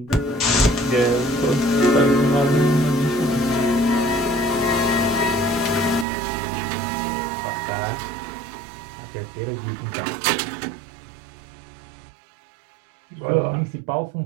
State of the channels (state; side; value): drops out; left; at 6.1 s